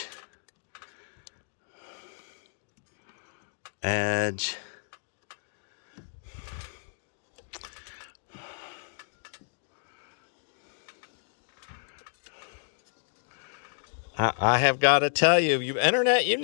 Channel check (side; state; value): right; silent; digital silence